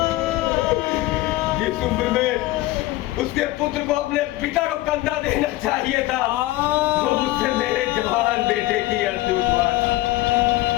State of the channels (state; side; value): quieter; right; 17.7 dB